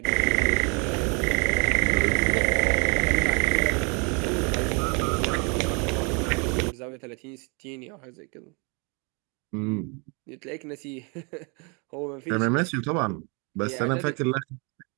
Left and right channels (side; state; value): left; quieter; 33.7 dB